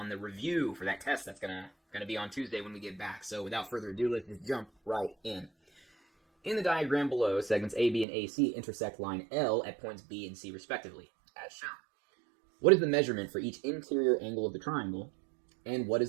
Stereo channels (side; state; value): left; drops out; at 8.1 s